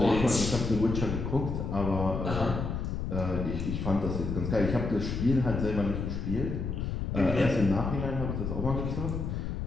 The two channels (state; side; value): noise; left; rumble, 3 dB below the sound